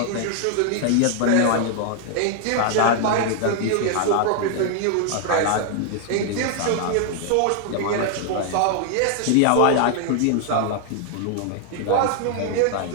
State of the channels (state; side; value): different; both; correlation 0.00